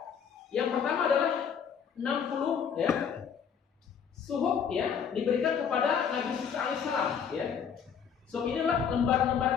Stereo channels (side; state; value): right; quieter; 7.2 dB